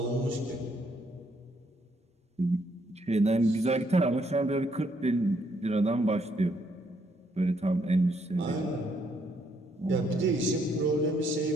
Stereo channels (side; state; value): both; normal; correlation 0.72